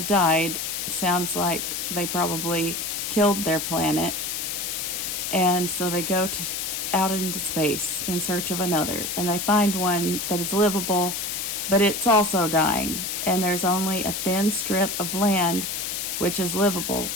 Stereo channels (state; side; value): noise; left; hiss, 3 dB below the sound